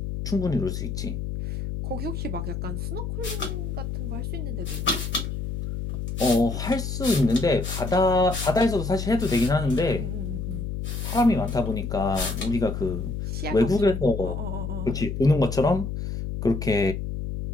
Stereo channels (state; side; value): noise; left; hum, 4 dB below the sound